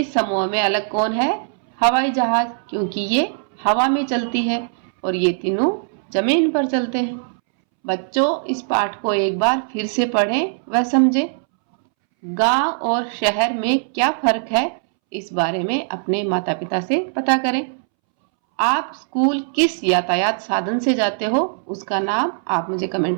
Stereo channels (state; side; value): silent; left; 65 dB below the other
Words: समूह में अलग कौन है? हवाई जहाज, क्योंकि ये हवा में चलती है और ये तीनों जमीन पर चलते हैं। बच्चों, इस पाठ को एक बार फिर से पढ़ें व समझें। गांव और शहर में क्या फर्क है, इस बारे में अपने माता पिता से पता करें। आप स्कूल किस यातायात साधन से जाते हो, उसका नाम आप मुझे